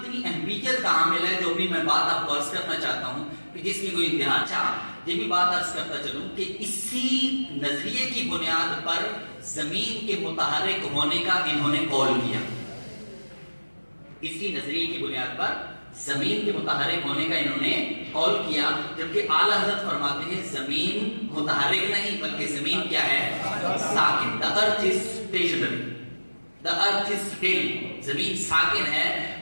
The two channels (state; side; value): inverted; both; correlation -1.00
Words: اہمیت کا حامل ہے، جو بھی میں بات آپ کو عرض کرنا چاہتا ہوں کہ جس کی کوئی انتہا چاہ، یہ بھی بات عرض کرتا چلوں کہ اسی نظریے کی بنیاد پر زمین کے متحرک ہونے کا انہوں نے قول کیا۔ اسی نظریے کی بنیاد پر زمین کے متحرک ہونے کا انہوں نے قول کیا، جبکہ اعلیٰ حضرت فرماتے ہیں زمین متحرک نہیں بلکہ زمین کیا ہے؟ ساکن۔ The earth is stationary. The earth is still. زمین ساکن ہے۔